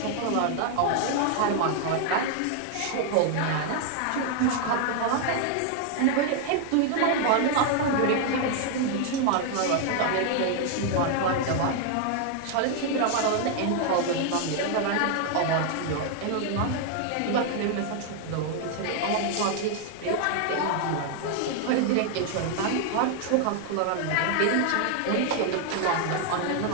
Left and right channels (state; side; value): different; both; correlation 0.00